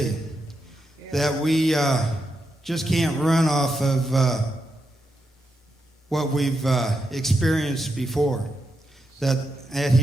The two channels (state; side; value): normal; both; correlation 0.85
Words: Yeah. That we just can't run off of what we've experienced before. That